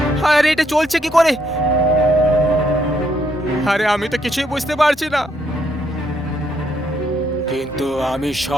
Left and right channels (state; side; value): normal; both; correlation 0.73